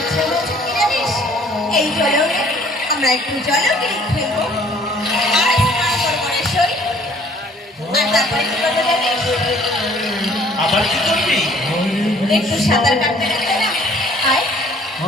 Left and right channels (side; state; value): both; normal; correlation 0.57